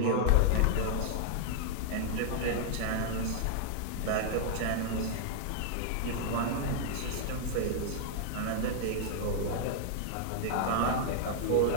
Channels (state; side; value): different; both; correlation -0.01